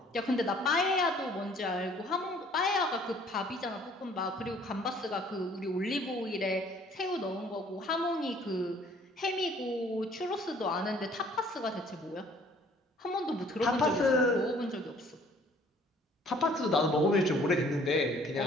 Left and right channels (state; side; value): normal; both; correlation 0.57